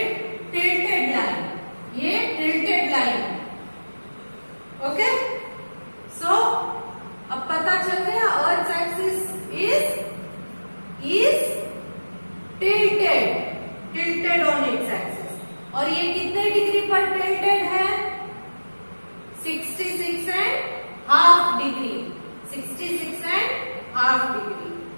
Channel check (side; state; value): both; inverted; correlation -1.00